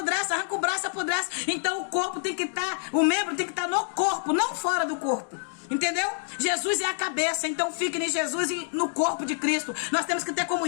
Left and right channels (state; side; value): silent; right; digital silence